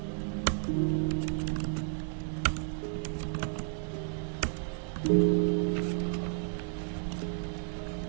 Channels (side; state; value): left; silent; digital silence